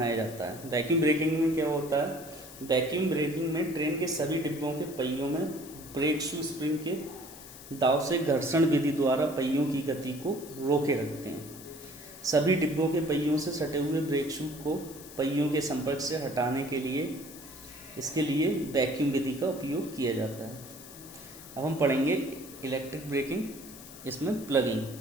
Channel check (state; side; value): noise; left; hiss, 16 dB below the sound